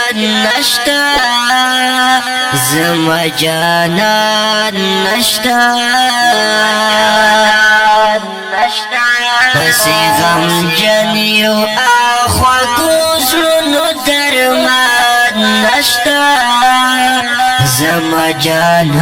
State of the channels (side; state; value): both; identical; correlation 1.00